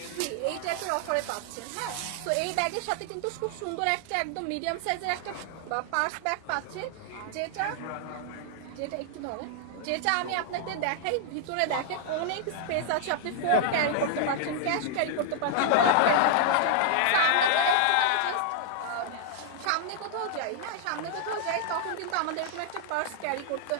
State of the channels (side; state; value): both; different; correlation -0.01